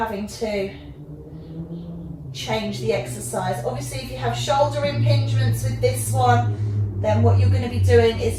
to change the exercise. Obviously, if you have shoulder impingements with this one, then what you're going to be doing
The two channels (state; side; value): identical; both; correlation 1.00